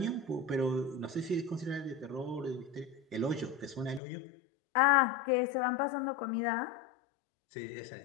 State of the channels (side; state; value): right; drops out; at 4.0 s